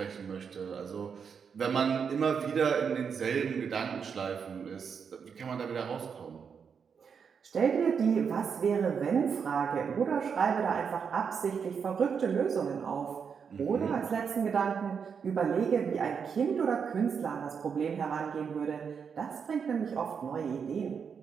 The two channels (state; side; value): quieter; left; 6.5 dB